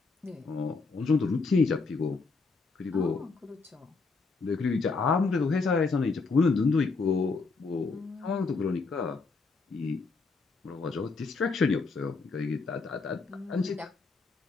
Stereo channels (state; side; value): quieter; right; 4.2 dB